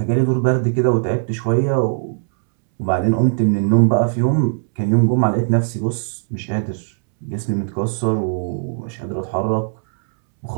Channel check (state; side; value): silent; left; 66 dB below the other